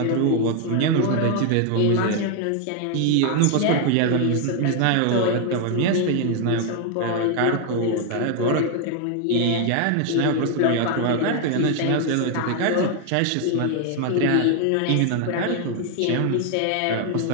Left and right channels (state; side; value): different; both; correlation 0.00